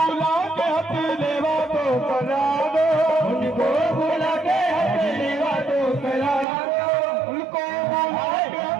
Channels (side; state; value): left; drops out; at 6.5 s